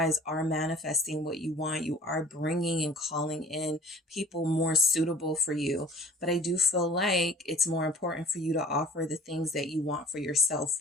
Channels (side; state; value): both; normal; correlation 0.46